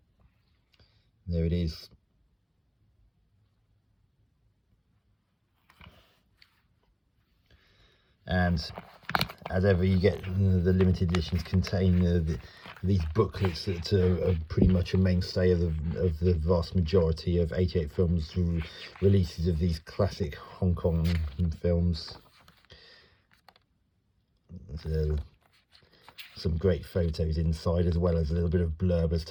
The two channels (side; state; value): both; identical; correlation 1.00